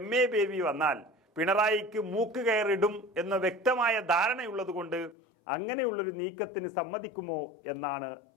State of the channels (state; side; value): drops out; right; at 5.2 s